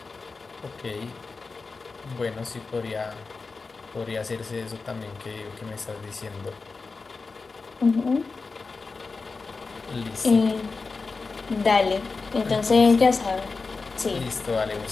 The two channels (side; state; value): right; quieter; 4.2 dB